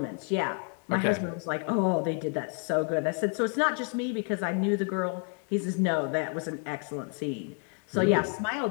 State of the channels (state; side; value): quieter; right; 39.9 dB